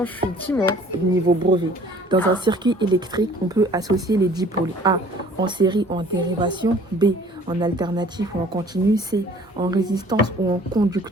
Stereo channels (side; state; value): both; normal; correlation 0.52